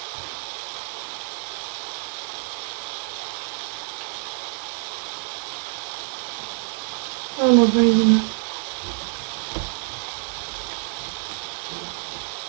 No dobre, ideme.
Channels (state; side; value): silent; left; digital silence